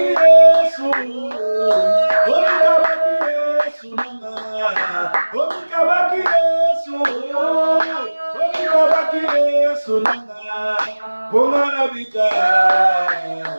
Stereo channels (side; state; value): both; inverted; correlation -1.00